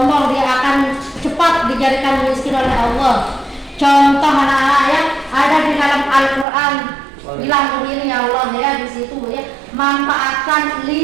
dia akan cepat dijadikan miskin oleh Allah. Contoh anak-anak ya, ada di dalam Al-Quran bilang begini ya Allah ya, di situ ya, manfaatkan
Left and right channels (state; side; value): drops out; left; at 6.5 s